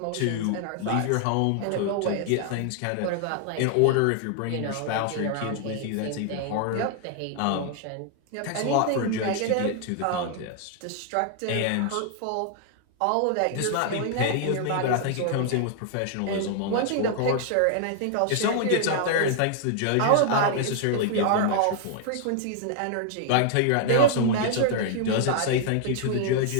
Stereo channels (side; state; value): both; different; correlation 0.00